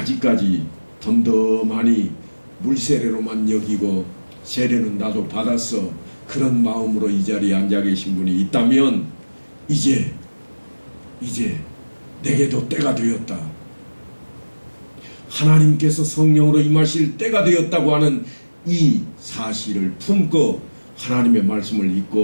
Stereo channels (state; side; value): inverted; both; correlation -1.00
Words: 덤덤하니 물세례로만 여기고 세례는 나도 받았어 그런 마음으로 이 자리에 앉아 계신 분이 있다면 이제 내게도 때가 되었다. 하나님께서 성령으로 임하실 때가 되었다고 하는 이 사실을 품고 하나님의 말씀을